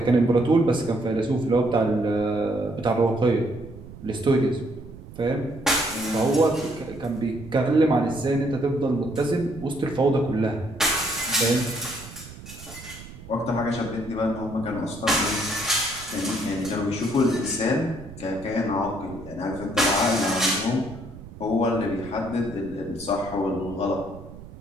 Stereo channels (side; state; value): right; noise; rumble, 16 dB below the sound